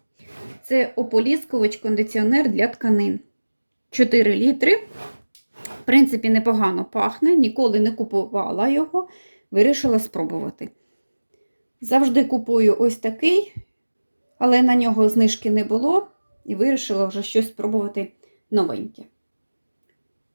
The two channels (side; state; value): both; inverted; correlation -1.00